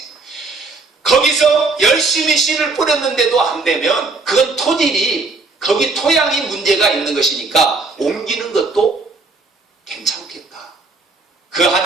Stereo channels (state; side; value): quieter; left; 3.7 dB